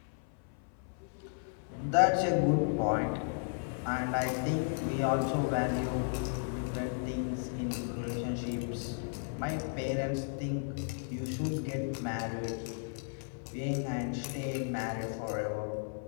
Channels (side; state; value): right; silent; 55 dB below the other